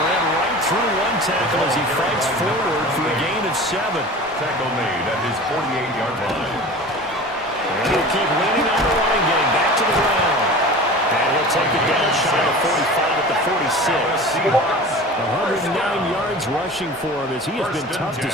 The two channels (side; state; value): both; normal; correlation 0.37